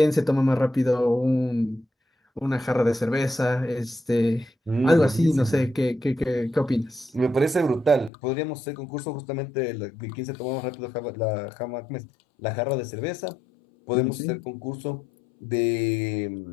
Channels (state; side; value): drops out; right; at 8.1 s